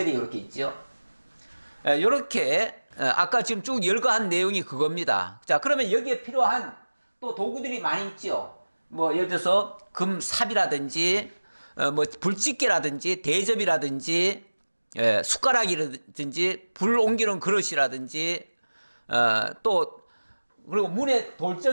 이렇게 있죠. 요렇게 아까 지금 쭉 열거한 내용이 그겁니다. 자, 그러면 여기에 필요한 또 도구들이 많이 있죠. 뭐 예를 들어서 금삽이라든지 뭐 불집게라든지 대접이라든지 숟가락이라든지 불 옮기는 그릇이라든지 또 그리고 문에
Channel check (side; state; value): both; inverted; correlation -1.00